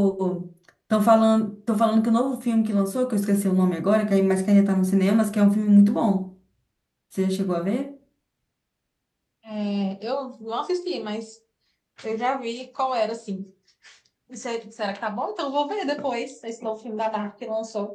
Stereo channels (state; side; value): identical; both; correlation 1.00